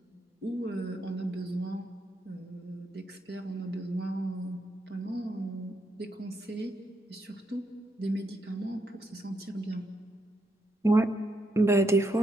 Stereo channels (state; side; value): normal; both; correlation 0.79